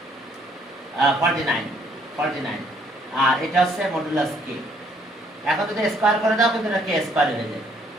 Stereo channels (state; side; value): normal; both; correlation 0.65